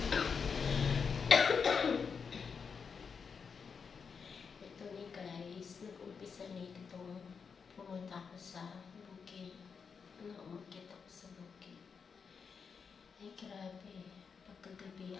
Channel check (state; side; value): quieter; right; 5.9 dB